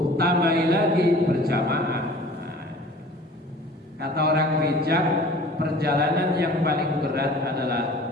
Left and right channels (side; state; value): both; normal; correlation 0.46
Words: tambahi lagi berjamaah. Kata orang bijak, perjalanan yang paling berat adalah